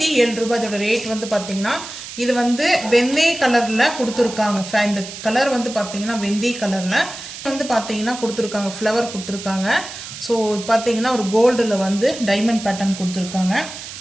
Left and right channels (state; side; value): noise; right; hiss, 11 dB below the sound